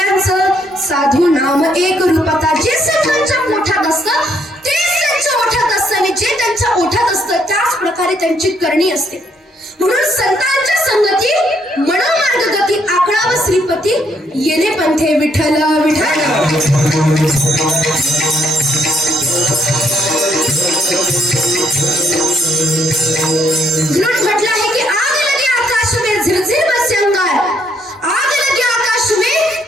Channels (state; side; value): normal; both; correlation 0.71